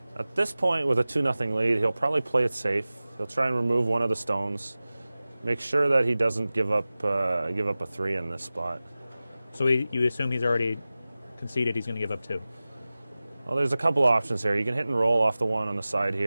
At this point, with a 2-0 lead, he'll probably play it safe. He'll try and remove one of the stones. Make sure that he doesn't give up a three in this spot. So you assume he's already conceded he's going to give up two? Well, there's a couple options here. You can hit and roll off the one on the side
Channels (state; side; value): inverted; both; correlation -0.97